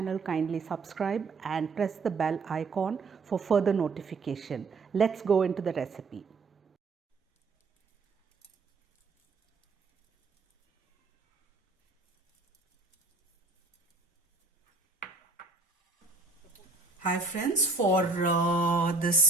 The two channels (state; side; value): quieter; left; 3.9 dB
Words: kindly subscribe and press the bell icon for further notification. Let's go into the recipe. Hi friends, for